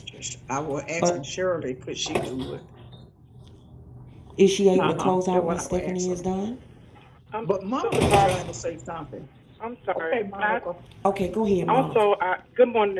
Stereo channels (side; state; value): both; identical; correlation 1.00